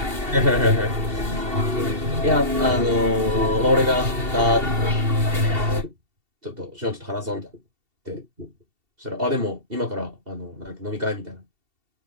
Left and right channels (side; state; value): left; late; 2.7 ms